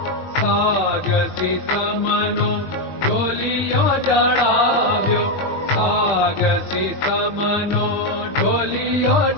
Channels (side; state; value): right; late; 21 ms